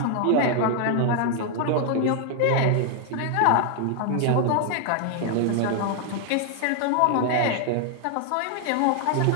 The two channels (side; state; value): both; different; correlation 0.00